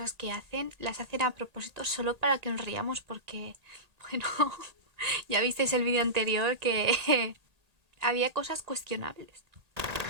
que hacen las hacen a propósito solo para que nos riamos porque, bueno, ya visteis el vídeo anterior que había cosas cuestionables.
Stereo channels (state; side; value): late; left; 1.8 ms